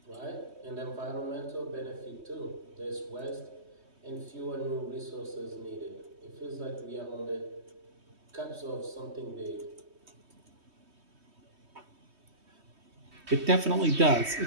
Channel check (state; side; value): late; left; 3.2 ms